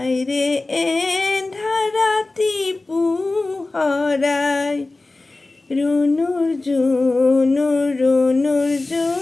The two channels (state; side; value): quieter; right; 3.1 dB